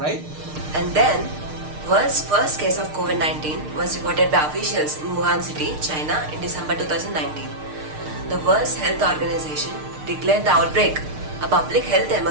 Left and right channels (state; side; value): late; left; 6.6 ms